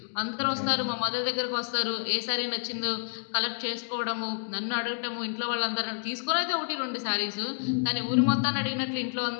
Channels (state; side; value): silent; right; digital silence